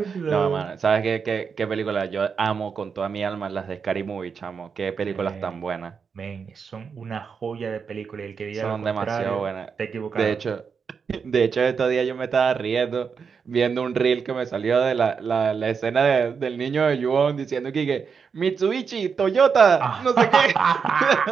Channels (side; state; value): left; quieter; 6.0 dB